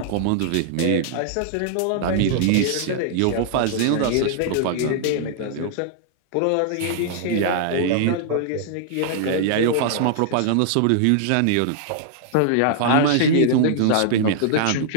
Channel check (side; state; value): both; different; correlation -0.01